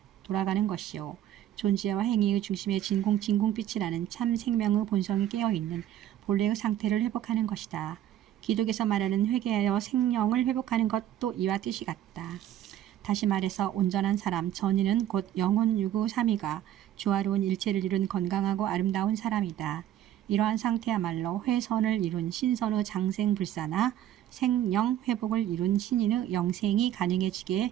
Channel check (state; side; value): quieter; left; 11.9 dB